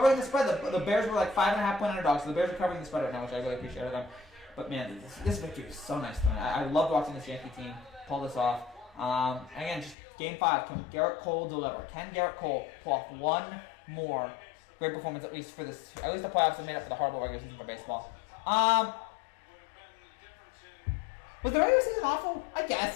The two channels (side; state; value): right; drops out; at 10.0 s